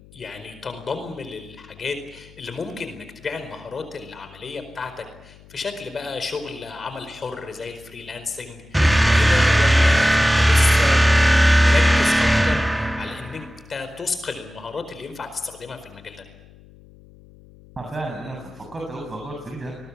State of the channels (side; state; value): left; noise; hum, 24 dB below the sound